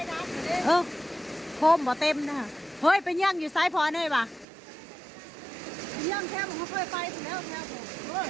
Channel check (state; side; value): drops out; left; at 4.5 s